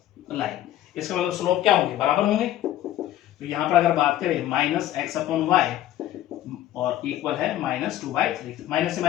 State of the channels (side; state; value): right; quieter; 13.1 dB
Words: line, इसका मतलब स्लोप क्या होंगे, बराबर होंगे। तो यहां पर अगर बात करें माइनस एक्स अपॉन वाई और इक्वल है माइनस 2/3, माइनस से